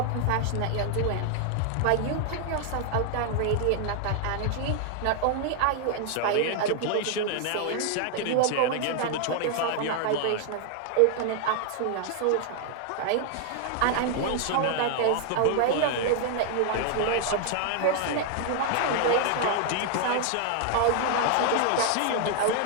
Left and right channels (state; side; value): different; both; correlation 0.00